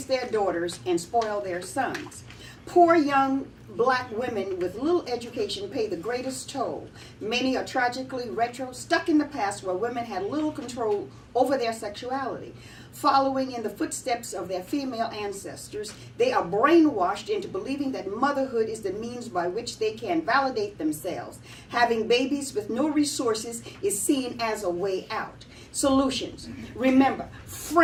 their daughters and spoil their sons. Poor young black women with little education pay the greatest toll. Many are tragically stuck in the past where women had little control over their sexuality. Following in the footsteps of their female ancestors, they are brainwashed into believing that motherhood is the means by which they can validate themselves. Having babies with no resources is seen as a way out. Solutions. Remember,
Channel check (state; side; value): identical; both; correlation 1.00